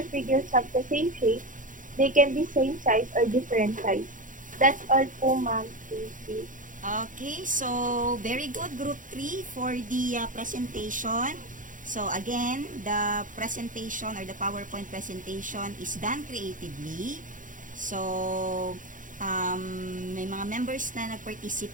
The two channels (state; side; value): late; left; 0.38 ms